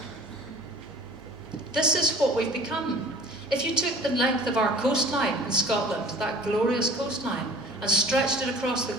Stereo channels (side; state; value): both; normal; correlation 0.47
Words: This is what we've become. If you took the length of our coastline in Scotland, that glorious coastline, and stretched it across the